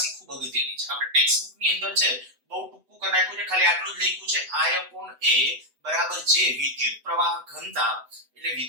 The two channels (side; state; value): left; late; 8.0 ms